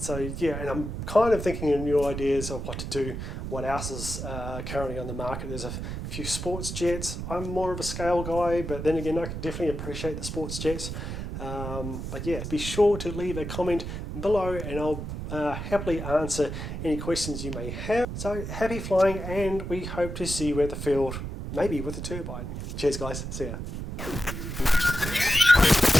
yeah, and I'm kind of thinking of new ideas of what to do, what else is currently on the market. There's a few sports jets. I'm more of a scale guy, but then again, I can definitely appreciate the sports jets. But yeah, be sure to leave a comment below, and I'll happily answer any questions you may have. So happy flying, and we hope to see you at the field, maybe with a turbine. Cheers guys, see ya.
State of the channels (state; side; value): noise; right; rumble, 6 dB below the sound